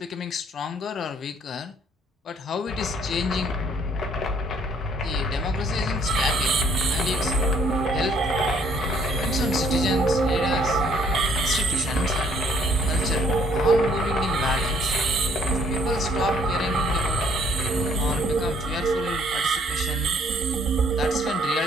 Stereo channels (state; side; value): normal; both; correlation 0.63